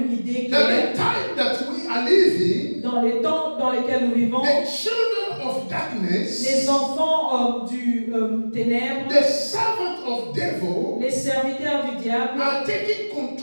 idée that claire the time that we are living, dans les temps dans lesquels nous vivons. the children of darkness, Les enfants du ténèbre, the servant of devil, les serviteurs du diable are taking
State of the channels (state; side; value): inverted; both; correlation -1.00